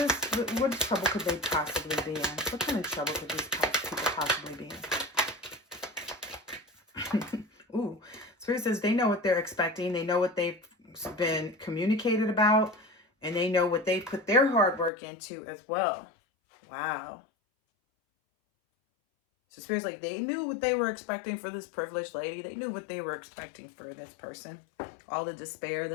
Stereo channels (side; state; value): right; drops out; at 14.9 s